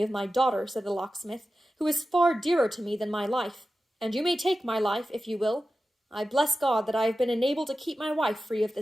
of my daughter," said the locksmith, "who is far dearer to me than my life, and you may take my life, if you will. I bless God that I have been enabled to keep my wife free of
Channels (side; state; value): both; normal; correlation 0.93